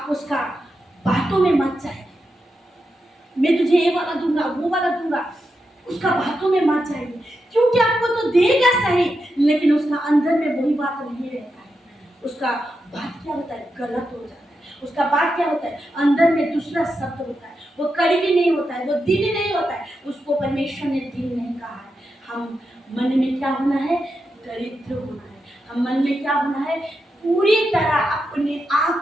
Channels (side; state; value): both; normal; correlation 0.87